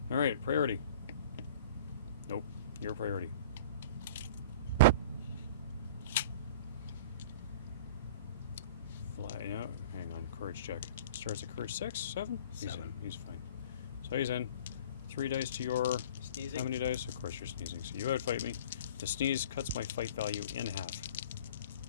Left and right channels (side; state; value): both; inverted; correlation -0.43